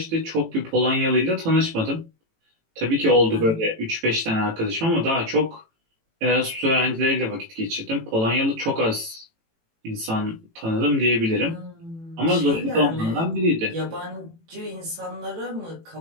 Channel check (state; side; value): late; left; 18 ms